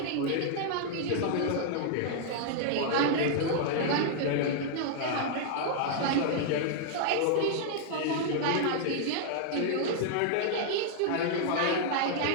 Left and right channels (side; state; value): both; different; correlation -0.01